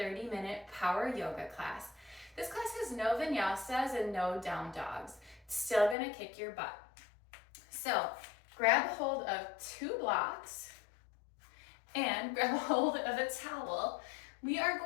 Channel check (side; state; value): right; drops out; at 6.0 s